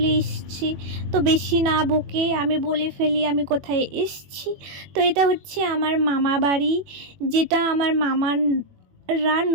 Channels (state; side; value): late; left; 21 ms